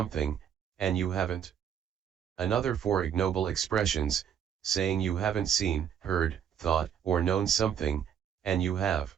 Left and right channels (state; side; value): quieter; left; 8.8 dB